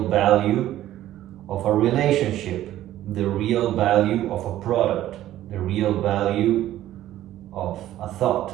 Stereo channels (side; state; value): left; quieter; 13.4 dB